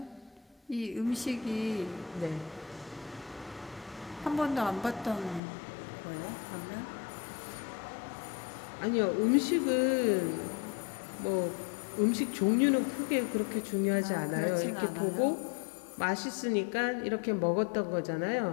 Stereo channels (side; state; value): right; drops out; at 5.4 s